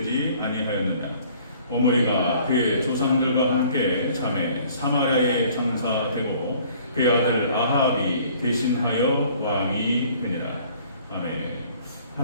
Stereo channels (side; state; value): both; inverted; correlation -0.55